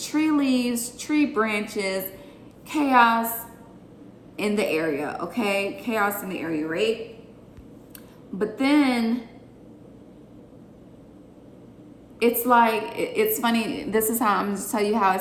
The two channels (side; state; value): both; identical; correlation 1.00